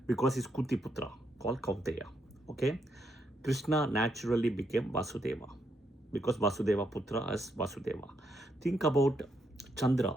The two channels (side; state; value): both; normal; correlation 0.78